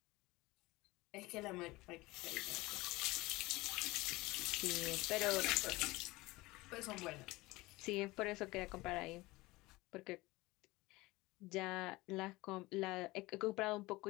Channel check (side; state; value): right; quieter; 21.0 dB